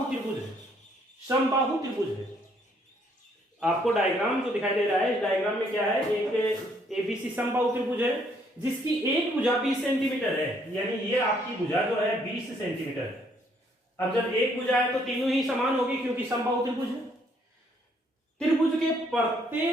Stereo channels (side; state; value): both; normal; correlation 0.67